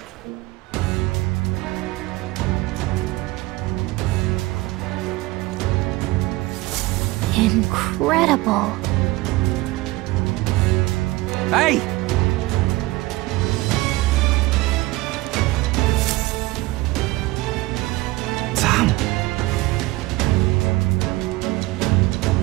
Incredible. Hey! Sam!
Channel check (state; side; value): quieter; left; 20.2 dB